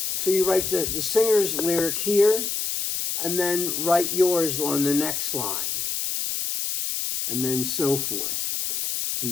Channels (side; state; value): left; noise; hiss, 2 dB below the sound